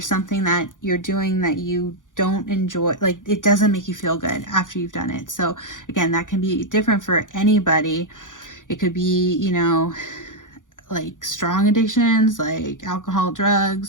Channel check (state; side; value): late; right; 0.88 ms